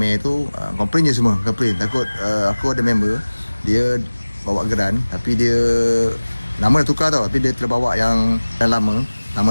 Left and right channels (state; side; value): inverted; both; correlation -1.00